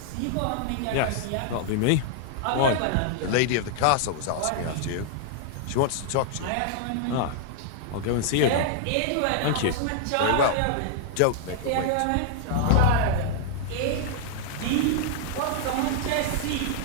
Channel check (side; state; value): both; different; correlation -0.01